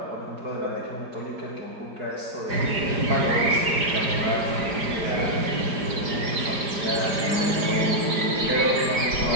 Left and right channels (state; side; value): late; left; 4.9 ms